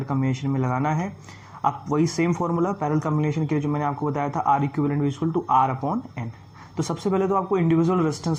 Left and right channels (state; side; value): identical; both; correlation 1.00